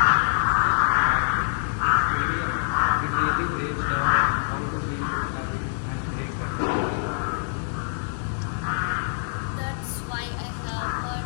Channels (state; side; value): silent; right; digital silence